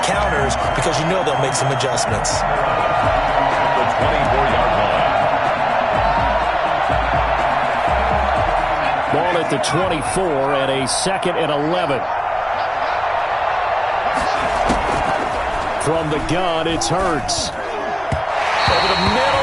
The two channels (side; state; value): both; identical; correlation 1.00